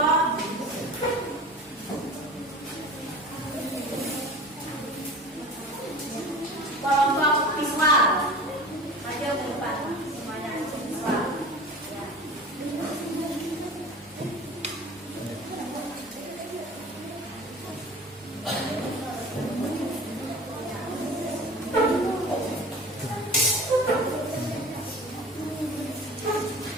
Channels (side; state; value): both; normal; correlation 0.38